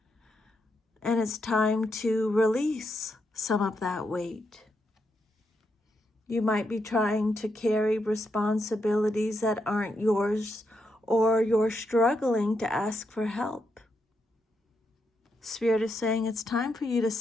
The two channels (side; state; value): both; normal; correlation 0.82